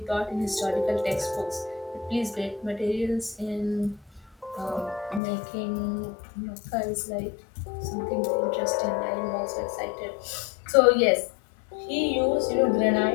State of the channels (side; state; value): right; drops out; at 5.2 s